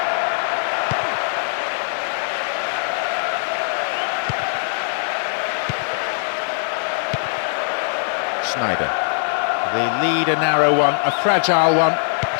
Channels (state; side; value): silent; right; 60 dB below the other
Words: Snyder. The lead a narrow one, a fragile one,